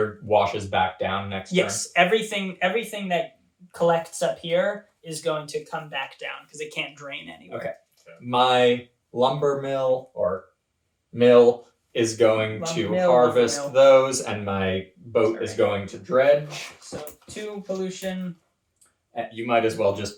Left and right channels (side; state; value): both; identical; correlation 1.00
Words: washes back down next Yes, everything that collects up here is going to come back down because it can't drain anywhere. Okay. turn. My lumber mill is going Lumber to mill, harvest lumber mill. those, and my boat is Alright. going to dredge. So 2 pollution. You might as well